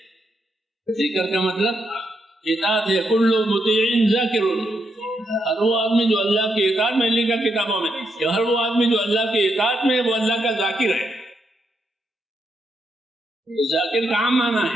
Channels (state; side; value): normal; both; correlation 0.80